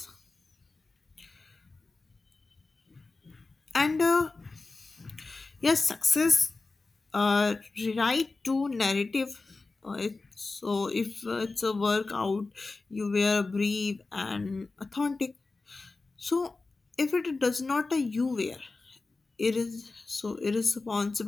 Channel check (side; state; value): right; quieter; 3.7 dB